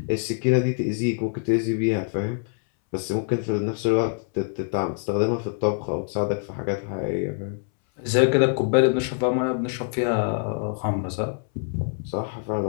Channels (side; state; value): right; silent; 62 dB below the other